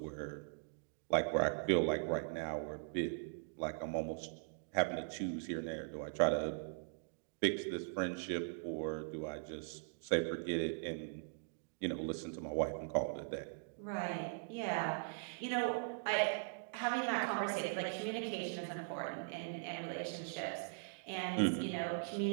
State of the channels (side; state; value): left; silent; digital silence